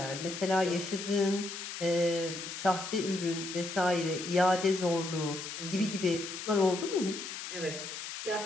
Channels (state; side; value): noise; left; hiss, 8 dB below the sound